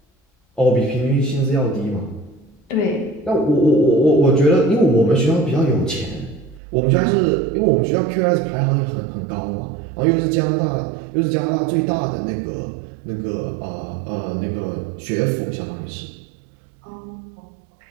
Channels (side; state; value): left; drops out; at 6.6 s